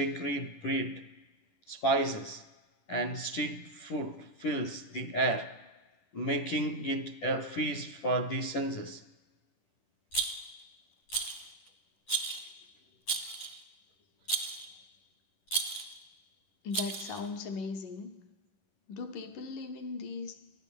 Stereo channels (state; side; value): late; right; 10 ms